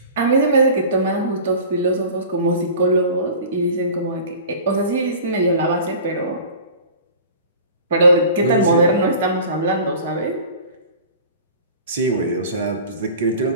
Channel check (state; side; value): inverted; both; correlation -0.40